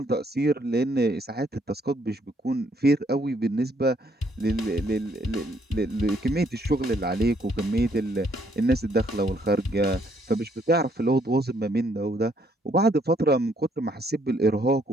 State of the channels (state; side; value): normal; both; correlation 0.68